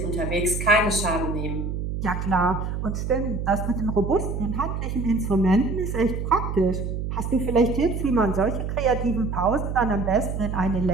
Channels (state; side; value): noise; right; hum, 3 dB below the sound